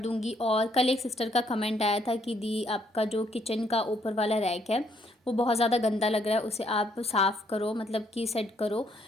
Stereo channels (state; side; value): normal; both; correlation 0.70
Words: और कल एक सिस्टर का कमेंट आया था कि दी, आपका जो किचन का ऊपर वाला रैक है वो बहुत ज़्यादा गंदा लग रहा है, उसे आप साफ़ करो, मतलब कि सेट करो।